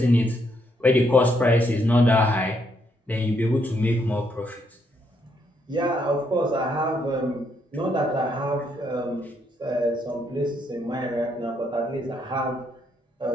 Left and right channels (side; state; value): both; normal; correlation 0.75